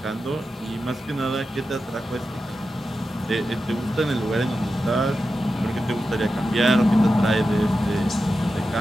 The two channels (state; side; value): normal; both; correlation 0.91